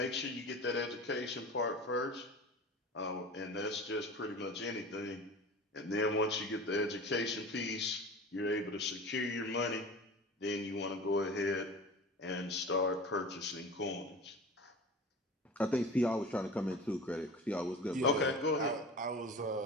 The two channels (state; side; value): normal; both; correlation 0.36